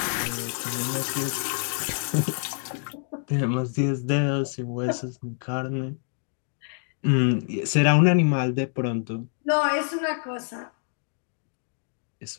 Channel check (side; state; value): right; silent; digital silence